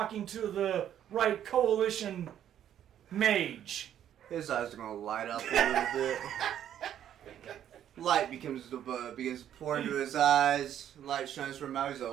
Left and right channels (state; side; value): quieter; left; 10.4 dB